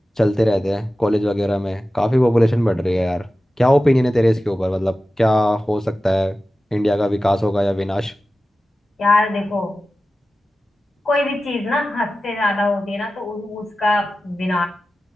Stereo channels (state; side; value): normal; both; correlation 0.94